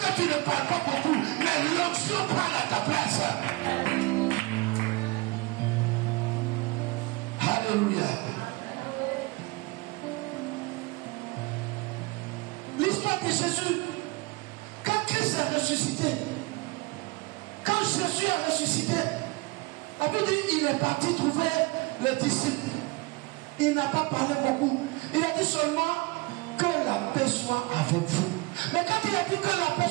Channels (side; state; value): left; quieter; 24.1 dB